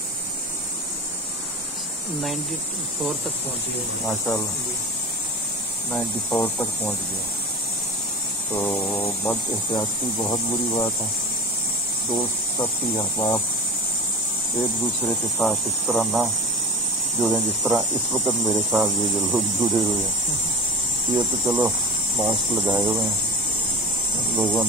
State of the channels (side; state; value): both; normal; correlation 0.30